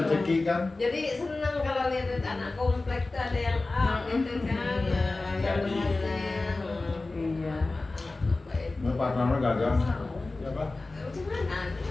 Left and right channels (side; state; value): right; quieter; 3.3 dB